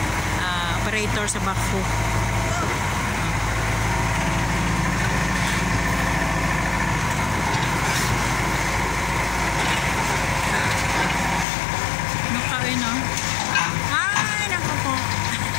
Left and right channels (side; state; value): right; drops out; at 11.5 s